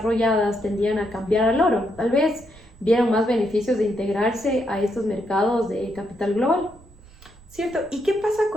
tendían a cambiar al oro. Tal vez vieron más beneficios de integrarse a estos mercados de capital global. Cierto, ¿y qué pasa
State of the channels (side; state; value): right; noise; rumble, 24 dB below the sound